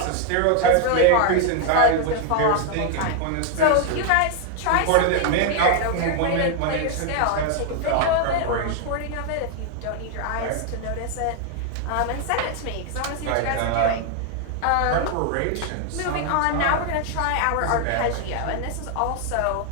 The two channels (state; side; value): different; both; correlation 0.00